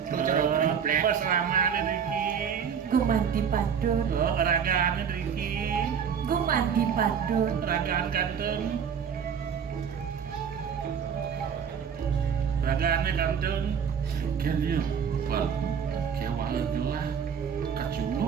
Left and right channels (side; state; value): left; quieter; 7.3 dB